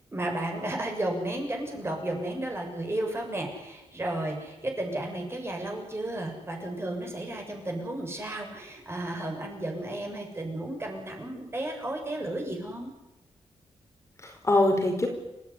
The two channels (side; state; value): both; normal; correlation 0.81